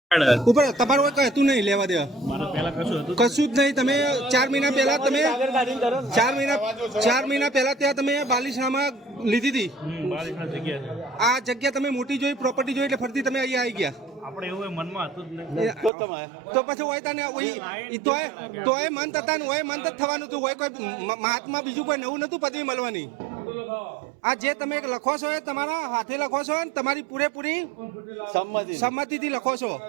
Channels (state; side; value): drops out; left; at 15.9 s